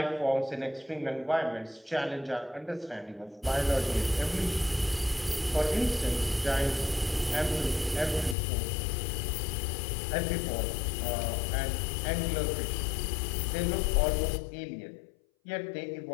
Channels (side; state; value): right; drops out; at 8.3 s